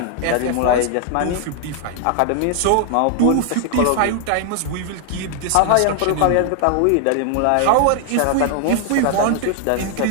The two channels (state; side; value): different; both; correlation 0.00